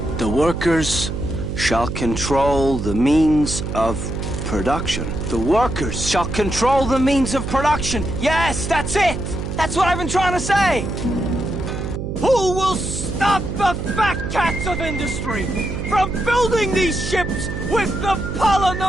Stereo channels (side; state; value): right; noise; hum, 5 dB below the sound